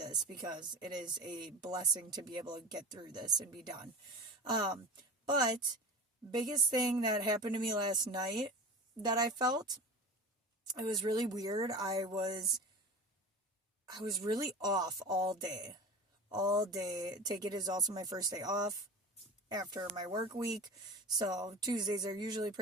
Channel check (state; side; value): normal; both; correlation 0.33